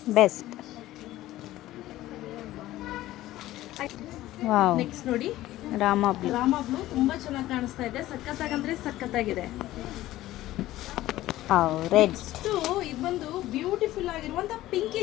ಬೆಸ್ಟ್. ವಾವ್, ನೆಕ್ಸ್ಟ್ ನೋಡಿ ರಾಮ ಬ್ಲೂ. ರಾಮ ಬ್ಲೂ ತುಂಬಾ ಚೆನ್ನಾಗಿ ಕಾಣಿಸ್ತಾ ಇದೆ. ಸಖತ್ತಾಗಂದ್ರೆ ಸಖತ್ತಾಗಿದೆ. ರೆಡ್. ಇದು ಬಂದು ಬ್ಯೂಟಿಫುಲ್ ಆಗಿರುವಂತ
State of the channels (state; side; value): quieter; right; 15.5 dB